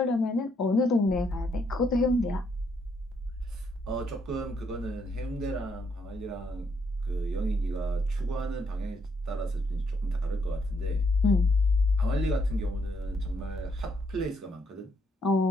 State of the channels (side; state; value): both; normal; correlation 0.74